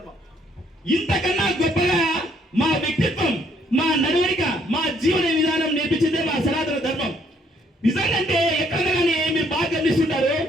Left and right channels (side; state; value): both; normal; correlation 0.67